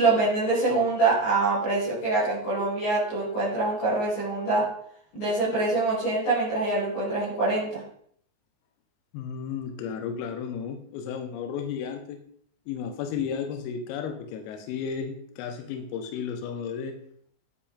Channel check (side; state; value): right; late; 19 ms